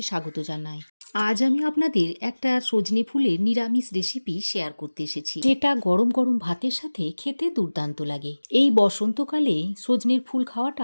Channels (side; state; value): both; inverted; correlation -1.00